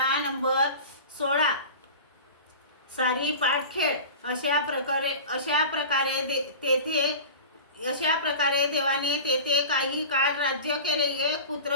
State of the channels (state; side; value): inverted; both; correlation -0.35